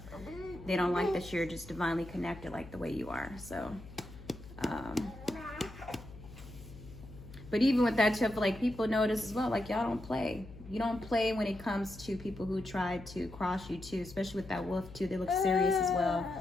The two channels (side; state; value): left; noise; hum, 16 dB below the sound